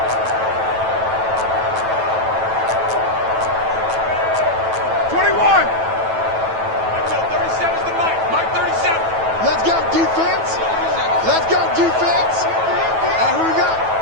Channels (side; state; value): left; late; 9.1 ms